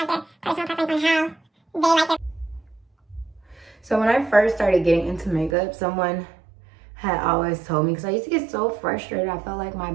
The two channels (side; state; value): left; drops out; at 5.6 s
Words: their personal preference on how they like their. So when I first started getting into makeup, someone had always told me, because I used to get so frustrated, I felt like my